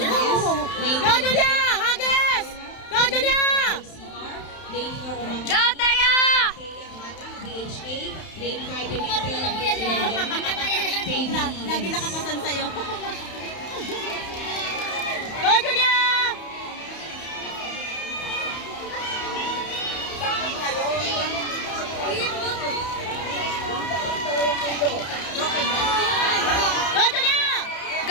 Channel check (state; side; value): late; right; 31 ms